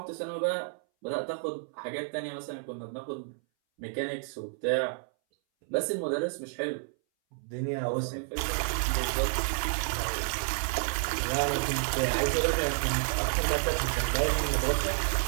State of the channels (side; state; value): left; silent; 58 dB below the other